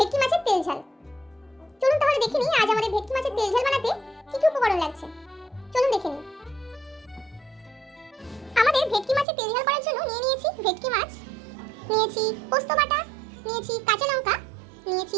মাছের তেল ঝাল। চলুন তাহলে দেখে নিই আজ আমাদের ভেটকি মাছের তেল ঝাল বানাতে কি কি উপকরণ লাগছে। চলুন দেখে নিই। আমাদের ভেটকি মাছের তেল ঝাল করার জন্য নিয়ে নিয়েছি ভেটকি মাছ, নিয়েছি পোস্ত বাটা, নিয়েছি কাঁচা লঙ্কা, নিয়েছি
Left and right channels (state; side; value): drops out; left; at 9.2 s